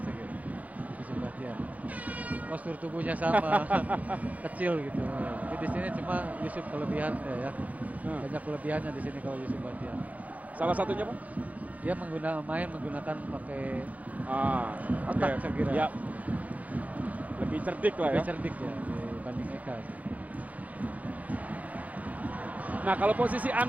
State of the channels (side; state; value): left; late; 0.073 ms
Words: saya kira. Yusuf Bahtiar. Postur tubuhnya sama, kecil gitu. Tapi di sini cuma Yusuf kelebihan ya. Banyak kelebihannya di sini kalau Yusuf Bahtiar. Salah satunya, Bung? Dia menggunakan pakai oke. otak saya kira. Ya. Lebih cerdik lah Lebih ya. cerdik ya dibanding Eka. Nah, kalau posisi